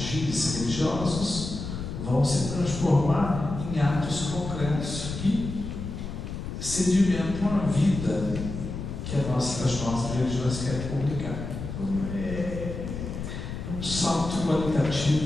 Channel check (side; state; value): left; noise; rumble, 7 dB below the sound